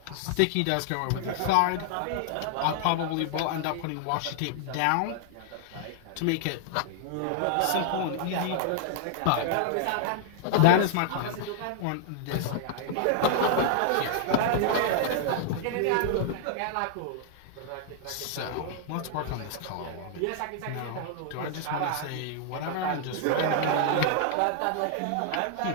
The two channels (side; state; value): both; different; correlation -0.01